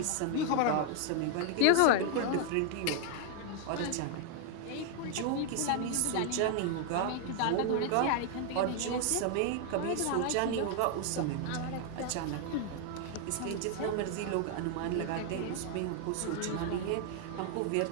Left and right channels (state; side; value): different; both; correlation 0.00